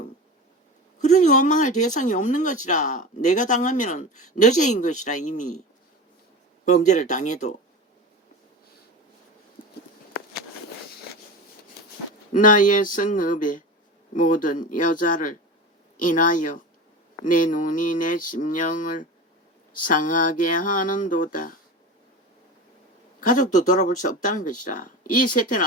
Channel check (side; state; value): both; normal; correlation 0.29